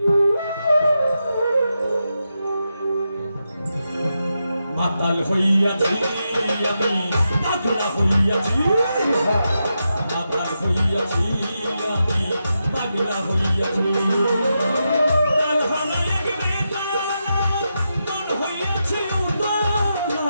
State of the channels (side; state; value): both; inverted; correlation -0.87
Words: মাতাল হইয়াছি আমি পাগলা হইয়াছি মাতাল হইয়াছি আমি পাগলা হইয়াছি তাল হারাই বেতালা মন হইয়াছে উতলা